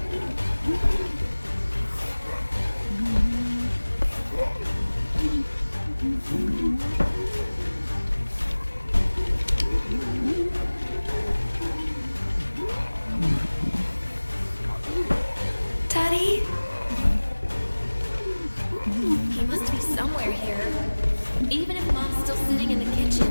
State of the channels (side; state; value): both; inverted; correlation -1.00